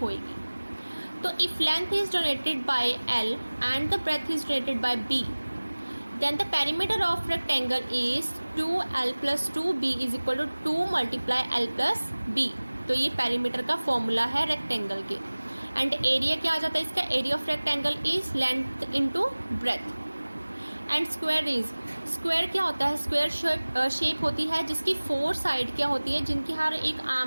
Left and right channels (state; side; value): inverted; both; correlation -1.00